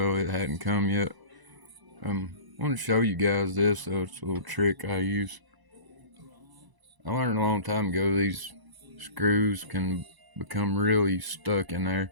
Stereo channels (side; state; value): left; late; 1.0 ms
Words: it hadn't come yet. I want to show you guys this. So it's a little trick I use. I learned a long time ago these screws can become really stuck in